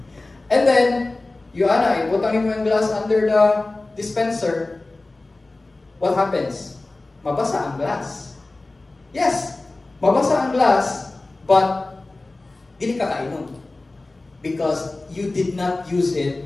And then, ibutangin mo yung glass under the dispenser. What happens? Mabasa ang glass. Yes, mabasa ang glass, but dili ka kainom. Because you did not use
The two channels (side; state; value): right; quieter; 3.1 dB